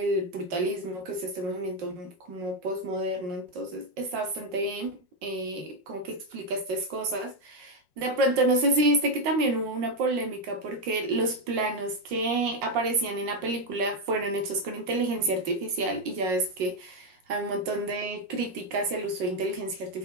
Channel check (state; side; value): late; left; 5.6 ms